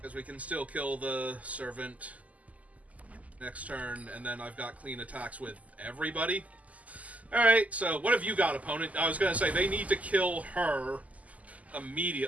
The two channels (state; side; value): late; left; 0.073 ms